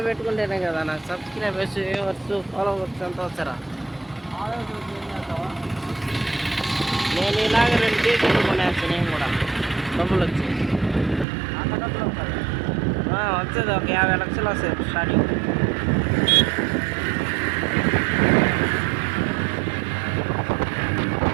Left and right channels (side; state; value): left; drops out; at 11.2 s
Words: పెట్టుకుంటేనే కదా నాకు సబ్స్క్రైబర్స్, వ్యూవర్స్, ఫాలోవర్స్ అంతా వస్తారా. నేను ఇలాగ 2 కేజీలు కొనేస్తాను నేను కూడా, డబ్బులు వచ్చి వస్తుంది. ఒక 50 లక్షలు వస్తాయి స్టార్టింగ్.